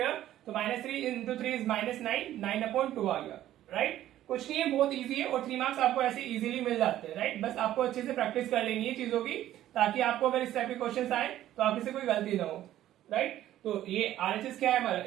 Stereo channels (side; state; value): left; quieter; 13.0 dB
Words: तो -3 इंटू 3 इज -9, 9/2 आ गया, राइट। कुछ नहीं है, बहुत इजी है और 3 मार्क्स आपको ऐसे इजीली मिल जाते हैं, राइट। बस आपको अच्छे से प्रैक्टिस कर लेनी है चीजों की, ताकि आपको अगर इस टाइप के क्वेश्चन आए तो आपसे से कोई गलती ना हो, राइट। तो ये आरएचएस क्या है हमारा,